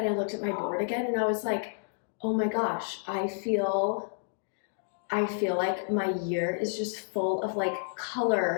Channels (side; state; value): right; silent; digital silence